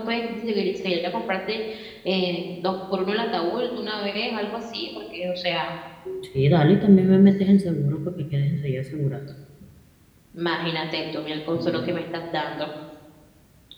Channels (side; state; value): both; identical; correlation 1.00